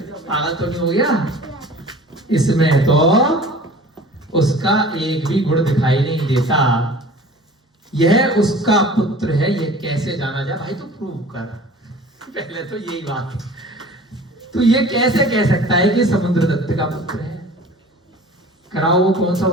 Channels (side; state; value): both; normal; correlation 0.44